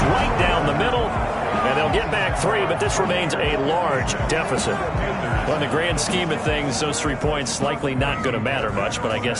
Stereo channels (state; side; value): identical; both; correlation 1.00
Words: right down the middle. And they'll get back 3, but this remains a large deficit. Well, in the grand scheme of things, those 3 points likely not going to matter much, but I